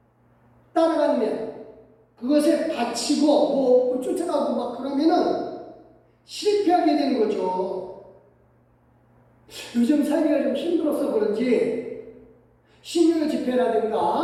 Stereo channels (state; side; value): identical; both; correlation 1.00